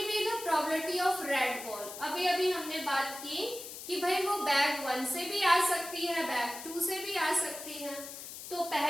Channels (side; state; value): left; noise; hiss, 11 dB below the sound